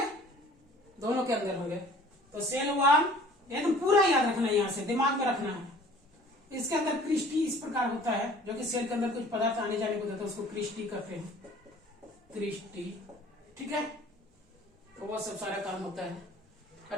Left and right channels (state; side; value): normal; both; correlation 0.50